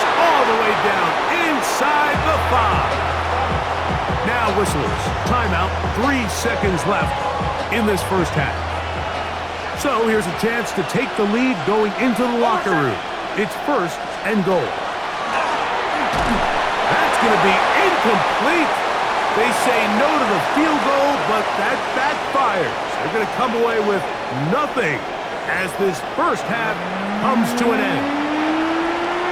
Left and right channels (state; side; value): identical; both; correlation 1.00